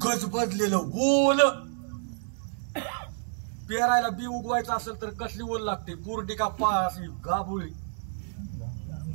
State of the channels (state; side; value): silent; left; 59 dB below the other